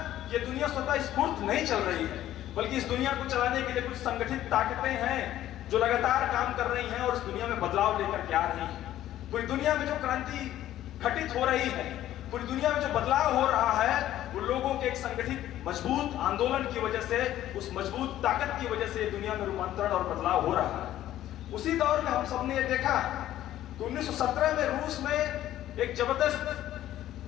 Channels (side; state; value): right; quieter; 13.0 dB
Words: कि ये दुनिया स्वतः स्फूर्त नहीं चल रही है, बल्कि इस दुनिया को चलाने के लिए कुछ संगठित ताकतें हैं जो लगातार काम कर रही हैं और इस दुनिया में बदलाव लेकर के आ रही हैं। पूरी दुनिया में जो क्रांति घटित हो रही है, पूरी दुनिया में जो बदलाव हो रहा है, वो लोगों के एक संगठित मजबूत आंदोलन की वजह से, उस मजबूत ताकत की वजह से दुनिया में रूपांतरण और बदलाव हो रहा है। उसी दौर में हम सबने ये देखा कि 1917 में रूस में एक